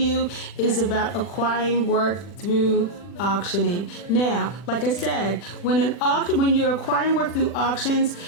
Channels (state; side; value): late; right; 40 ms